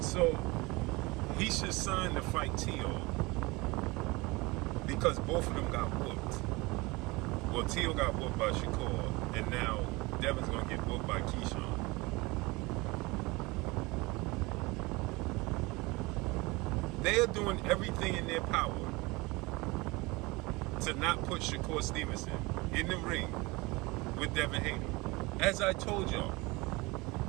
So he should sign to fight Teo because both of them got whooped. Well, Teo got whooped by Shakur, and now Devin's gonna get whooped by Keyshawn. They are doing everything in their power to not put Shakur Stevenson in the ring with Devin Haney. As I told y'all,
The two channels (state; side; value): quieter; left; 23.8 dB